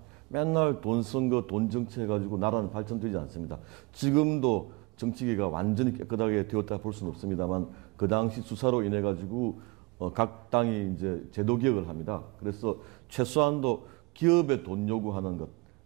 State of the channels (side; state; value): left; quieter; 25.0 dB